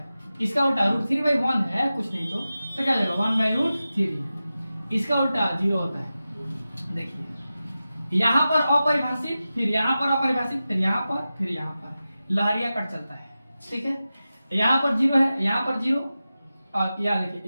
इसका उल्टा √3/1 है कुछ नहीं तो क्या हो जाएगा 1/√3, इसका उल्टा 0 होता है। देखिए यहाँ पर अपरिभाषित, फिर यहाँ पर अपरिभाषित, फिर यहाँ पर लहरिया कट चलता है। ठीक है, यहाँ पर 0 है, यहाँ पर 0 और यहाँ देखिए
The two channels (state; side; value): inverted; both; correlation -0.94